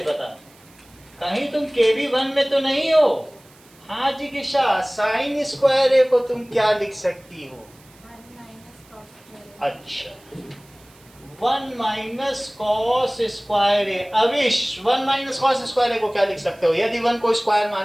पता? कहीं तुम KB1 में तो नहीं हो? हाँ जी किशा, साइन स्क्वायर ए को तुम क्या लिख सकती हो? अच्छा, 1 माइनस कॉस स्क्वायर ए। अविश, 1 माइनस कॉस स्क्वायर ए को क्या लिख सकते हो यदि 1 को स्क्वायर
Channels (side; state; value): right; noise; hiss, 28 dB below the sound